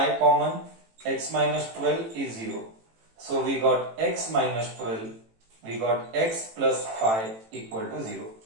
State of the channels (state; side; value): late; left; 18 ms